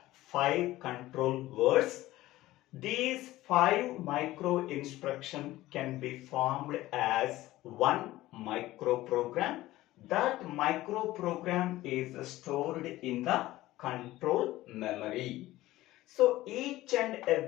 5 control words. These 5 micro instructions can be formed as one microprogram. That microprogram is stored in the control memory. So each and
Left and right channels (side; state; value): right; quieter; 16.7 dB